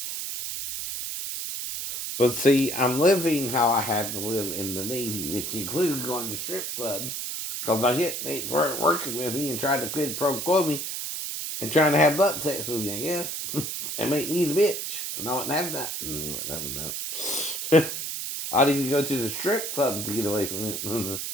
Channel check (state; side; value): noise; right; hiss, 4 dB below the sound